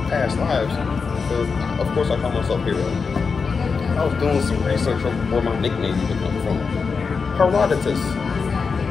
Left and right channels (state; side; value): quieter; right; 5.1 dB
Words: past lives, so of course I call myself Hero. I was doing some research on where my nickname even comes from. Herodotus.